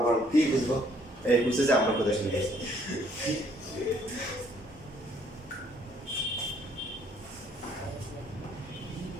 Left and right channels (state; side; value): normal; both; correlation 0.64